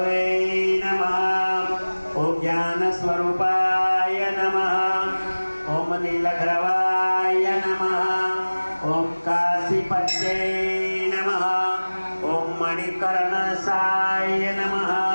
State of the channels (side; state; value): both; inverted; correlation -1.00